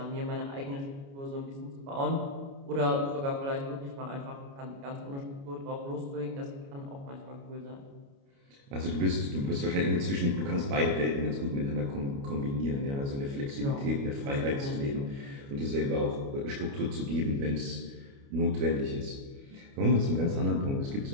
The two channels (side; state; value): left; late; 29 ms